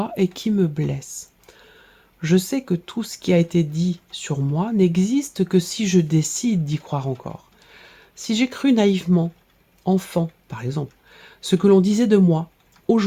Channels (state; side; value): identical; both; correlation 1.00